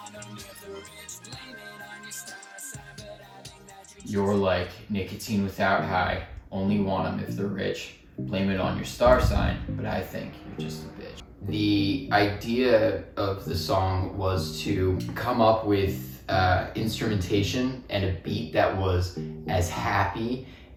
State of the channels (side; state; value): both; identical; correlation 1.00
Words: You're like, nicotine without high, only want them if they're rich. Blame it on your star sign, but I think you're just a bitch. The idea of the song was to come up with instrumentation and a beat that was as happy